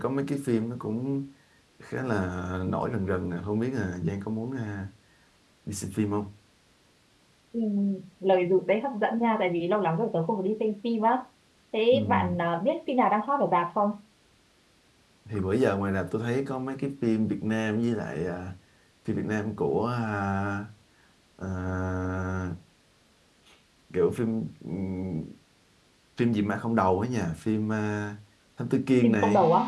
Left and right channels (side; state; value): both; identical; correlation 1.00